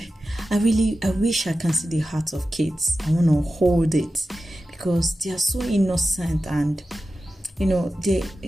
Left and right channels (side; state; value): both; normal; correlation 0.93